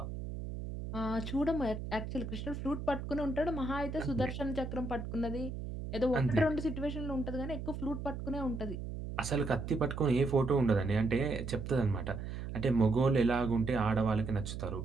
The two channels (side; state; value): right; noise; hum, 6 dB below the sound